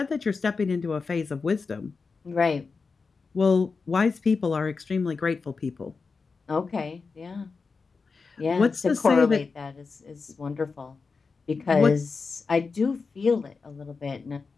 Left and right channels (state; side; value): quieter; right; 4.6 dB